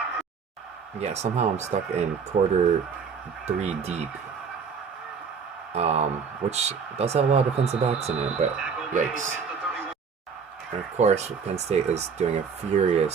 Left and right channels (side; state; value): left; quieter; 6.0 dB